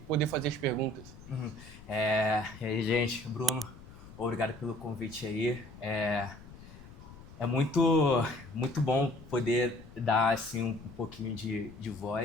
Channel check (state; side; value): noise; left; rumble, 18 dB below the sound